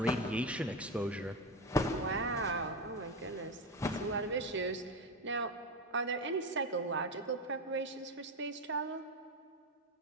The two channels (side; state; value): both; normal; correlation 0.15